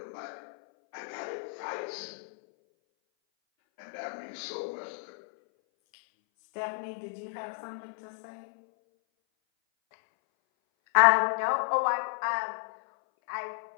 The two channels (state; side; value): silent; right; 57 dB below the other